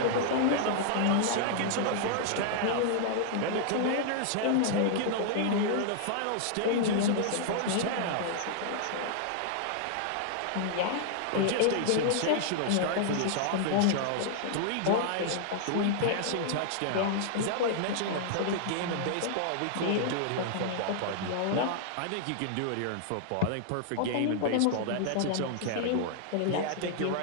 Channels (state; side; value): different; both; correlation -0.01